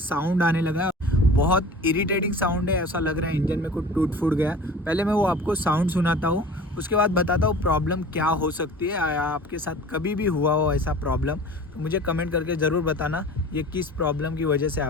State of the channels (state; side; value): normal; both; correlation 0.40